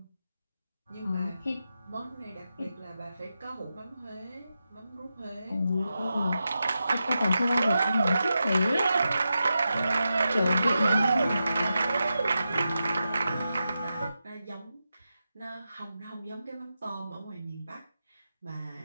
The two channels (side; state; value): both; inverted; correlation -0.89